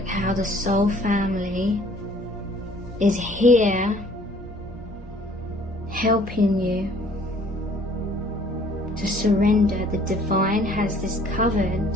how the soul family is here helping you to surrender. The divine has this covered.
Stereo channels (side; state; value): both; normal; correlation 0.56